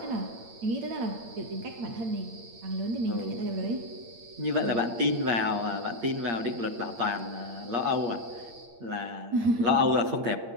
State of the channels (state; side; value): late; left; 8.7 ms